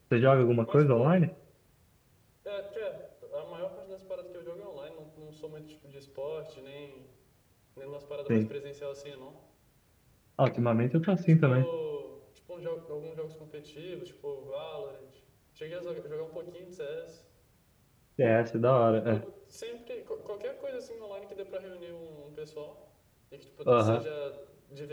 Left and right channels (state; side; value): identical; both; correlation 1.00